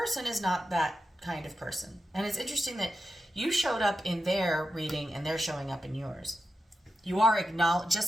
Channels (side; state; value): both; normal; correlation 0.90